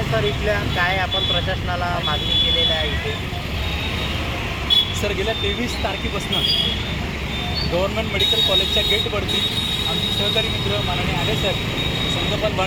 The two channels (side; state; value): both; identical; correlation 1.00